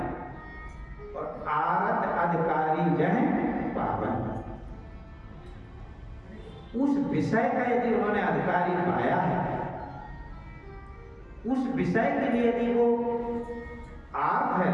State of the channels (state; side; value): identical; both; correlation 1.00